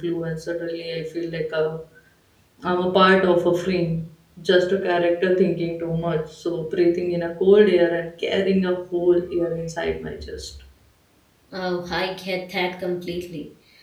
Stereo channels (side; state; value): both; identical; correlation 1.00